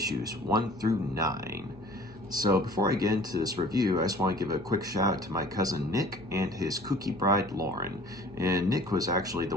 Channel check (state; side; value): noise; left; hum, 23 dB below the sound